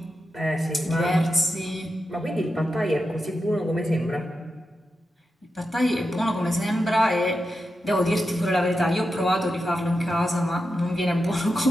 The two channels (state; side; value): normal; both; correlation 0.89